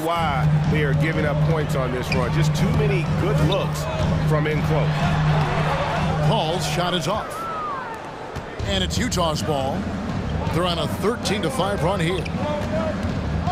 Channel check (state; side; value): identical; both; correlation 1.00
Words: why they are giving up points on this run. Just too many good looks from in close. Paul's shot is off. And it's Utah's ball. They're on a 13-5 run here.